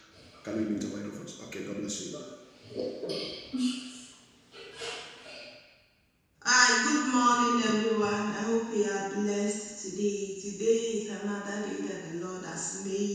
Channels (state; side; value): identical; both; correlation 1.00